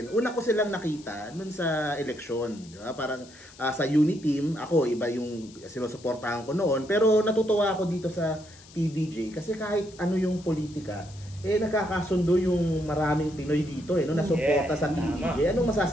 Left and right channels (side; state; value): left; noise; hiss, 22 dB below the sound